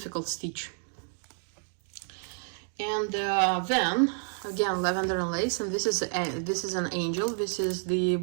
stitch. And then again lavender and lace, and this is an angel. This is the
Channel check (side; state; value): left; silent; 58 dB below the other